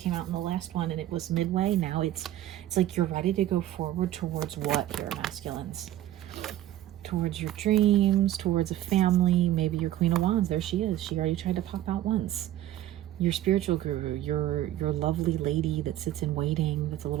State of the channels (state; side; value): quieter; left; 13.5 dB